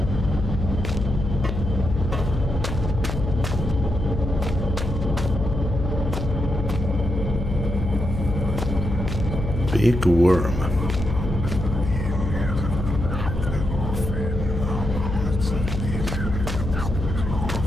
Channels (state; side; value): noise; left; hum, 4 dB below the sound